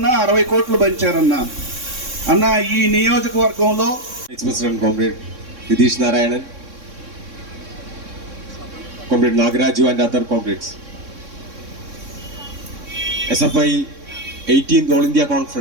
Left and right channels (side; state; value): left; late; 3.6 ms